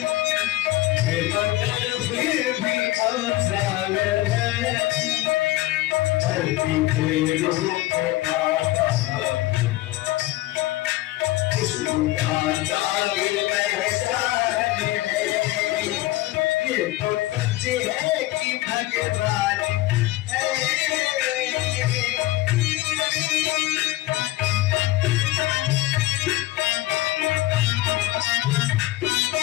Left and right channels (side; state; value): right; quieter; 17.4 dB